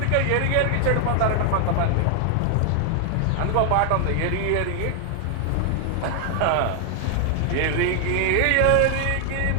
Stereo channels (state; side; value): different; both; correlation 0.00